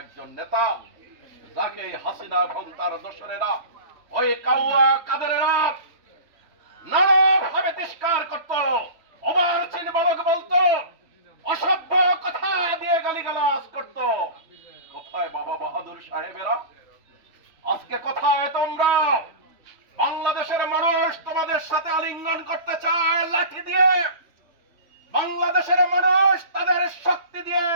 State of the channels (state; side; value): late; left; 3.5 ms